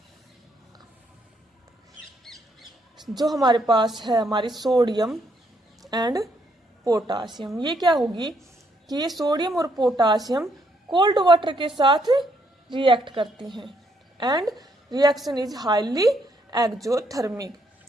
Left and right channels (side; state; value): both; normal; correlation 0.73